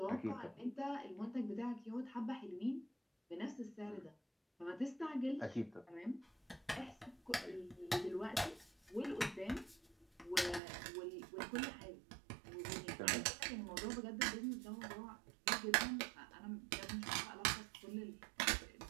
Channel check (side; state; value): left; drops out; at 10.6 s